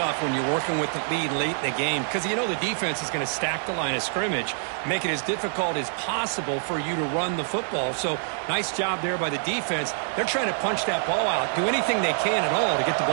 when you're working with the lead late in the game because you know the defense is going to stack the line of scrimmage, make it as difficult as possible for you to run the football. So nice job there by the defense. They're trying to punch that ball out, do anything they can at all to get the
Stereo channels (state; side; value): silent; left; 61 dB below the other